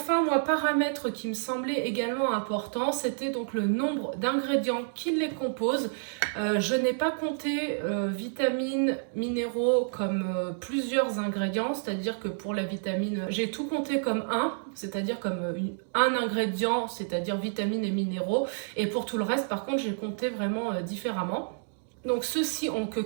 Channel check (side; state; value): left; silent; digital silence